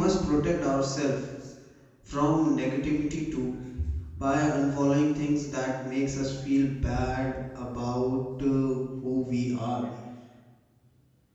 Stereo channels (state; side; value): identical; both; correlation 1.00